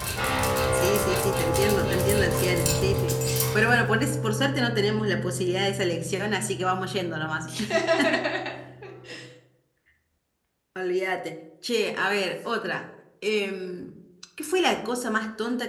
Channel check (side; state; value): both; identical; correlation 1.00